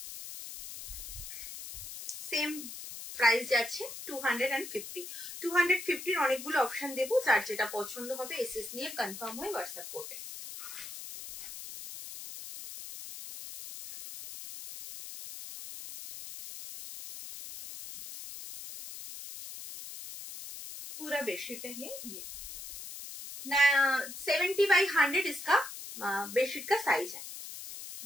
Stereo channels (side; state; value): left; noise; hiss, 10 dB below the sound